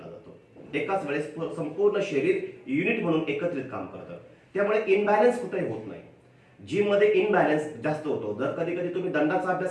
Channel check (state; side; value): identical; both; correlation 1.00